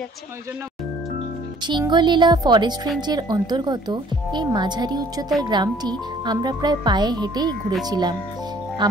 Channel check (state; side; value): normal; both; correlation 0.57